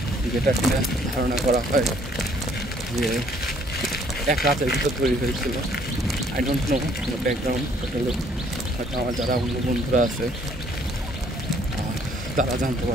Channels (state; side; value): normal; both; correlation 0.62